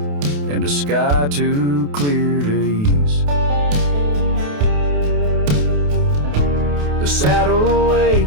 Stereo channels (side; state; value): left; late; 28 ms